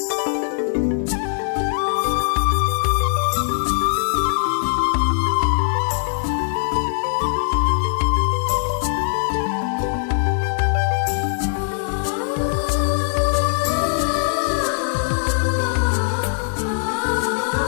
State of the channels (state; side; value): silent; right; digital silence